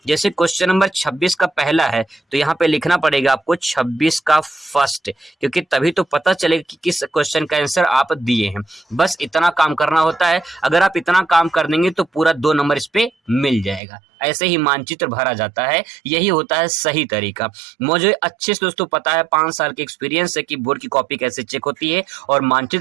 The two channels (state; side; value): drops out; left; at 13.8 s